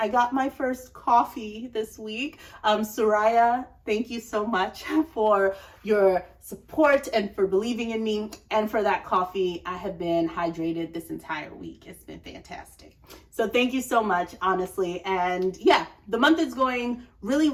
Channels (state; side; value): identical; both; correlation 1.00